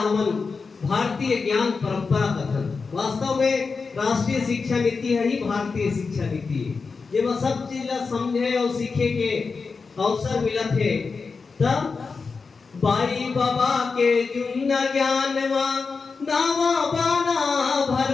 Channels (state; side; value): quieter; right; 4.7 dB